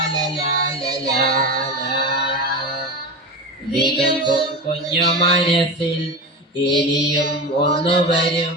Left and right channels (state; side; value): normal; both; correlation 0.24